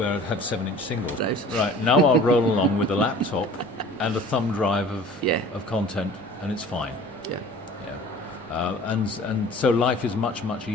I'd have 7-inch singles. Right, now I'll roll along with a laptop and a thumb drive of content, and it's fine. and so life is much, much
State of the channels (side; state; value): both; normal; correlation 0.45